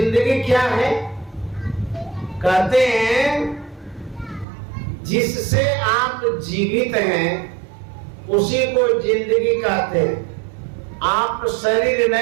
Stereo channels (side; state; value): left; drops out; at 4.5 s